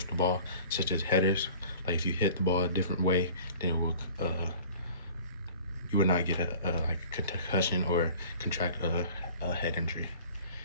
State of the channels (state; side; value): inverted; both; correlation -0.46